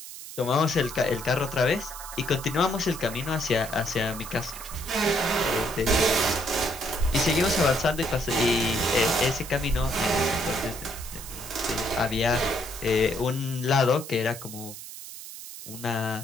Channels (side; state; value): right; noise; hiss, 12 dB below the sound